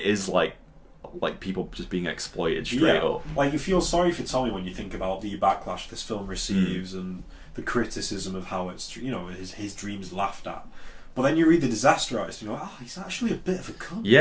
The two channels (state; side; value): identical; both; correlation 1.00